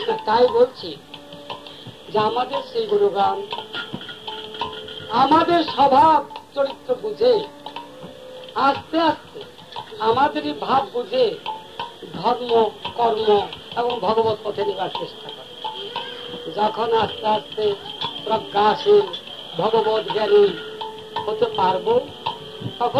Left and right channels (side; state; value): both; identical; correlation 1.00